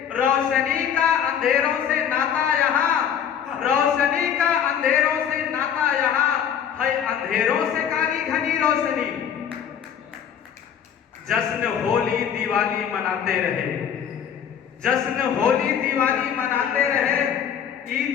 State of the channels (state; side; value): quieter; right; 8.5 dB